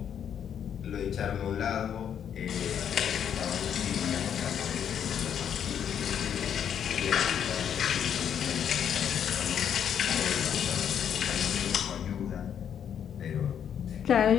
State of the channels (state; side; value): quieter; right; 8.7 dB